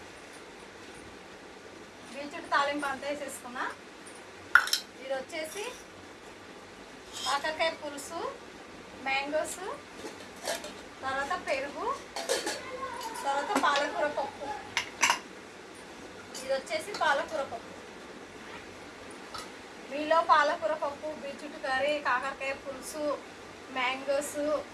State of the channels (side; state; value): both; identical; correlation 1.00